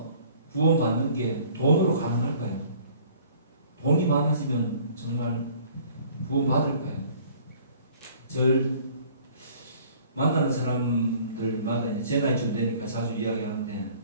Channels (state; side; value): inverted; both; correlation -0.53